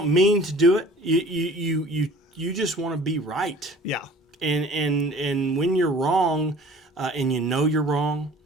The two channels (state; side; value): normal; both; correlation 0.47